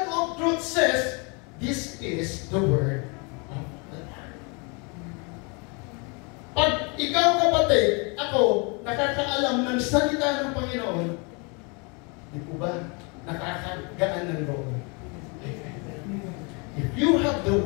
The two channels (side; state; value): right; quieter; 32.3 dB